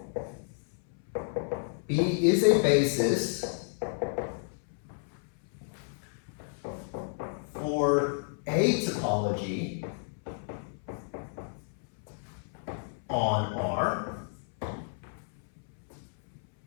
B is a basis for a topology on R,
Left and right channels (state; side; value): silent; right; 57 dB below the other